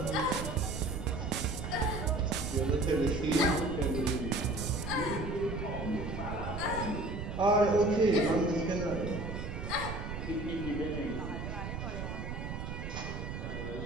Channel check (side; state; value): right; noise; rumble, 5 dB below the sound